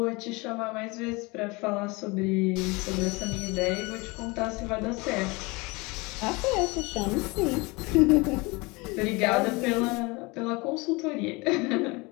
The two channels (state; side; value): quieter; right; 25.6 dB